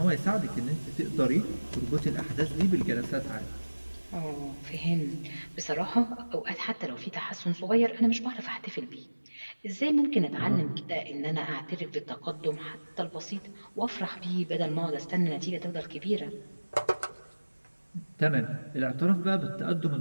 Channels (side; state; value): both; inverted; correlation -1.00